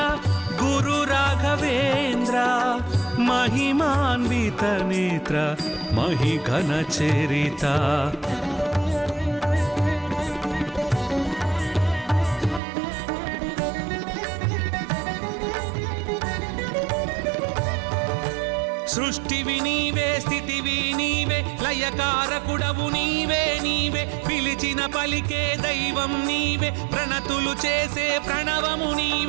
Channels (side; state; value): left; drops out; at 12.6 s